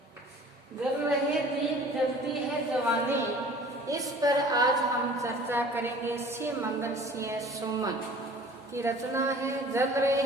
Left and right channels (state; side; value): normal; both; correlation 0.47